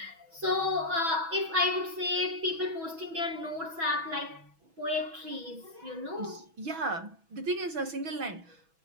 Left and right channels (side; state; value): left; late; 6.1 ms